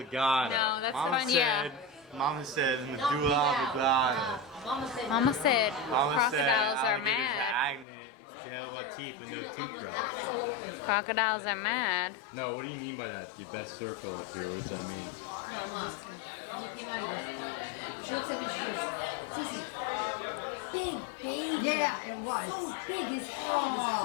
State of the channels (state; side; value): drops out; right; at 7.9 s